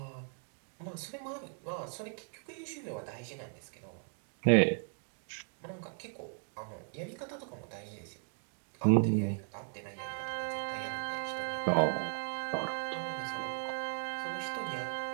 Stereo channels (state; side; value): silent; left; 53 dB below the other